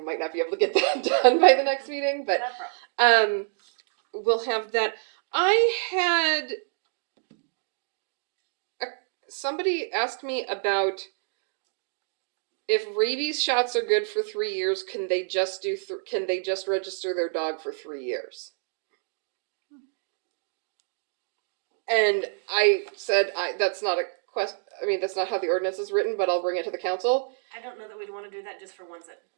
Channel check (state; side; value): silent; left; digital silence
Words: might not be able to get that done by the next meeting, but Not a problem. we'll have that. I had somebody asked me about if rabies shots are good for 3 years. Can they just register their dog for 3 years? And I said, that's not a question. I mean, that's not how the ordinance is written, but I'll bring it to the council. I don't know that we'd wanna do that just for ones that,